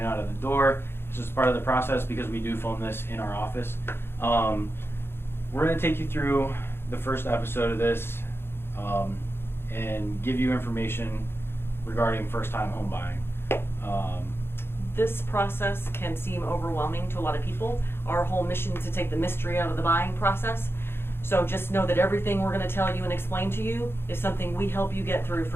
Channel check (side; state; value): right; late; 0.11 ms